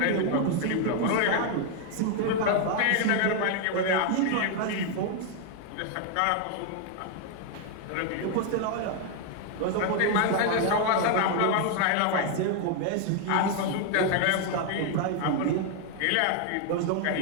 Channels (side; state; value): both; different; correlation 0.00